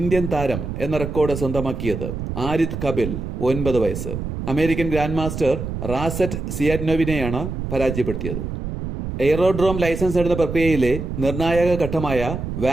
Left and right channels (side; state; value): right; noise; rumble, 5 dB below the sound